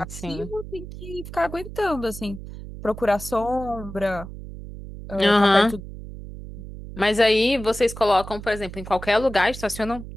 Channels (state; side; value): noise; right; hum, 12 dB below the sound